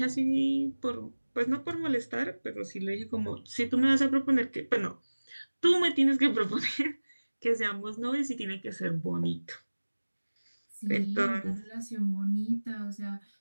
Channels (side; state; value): both; inverted; correlation -1.00